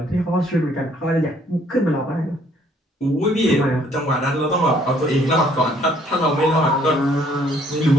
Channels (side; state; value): both; normal; correlation 0.63